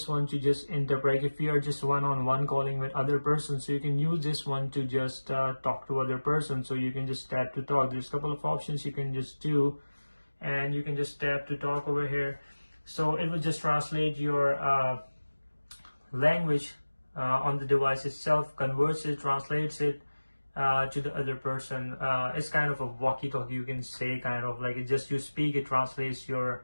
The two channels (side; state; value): both; inverted; correlation -1.00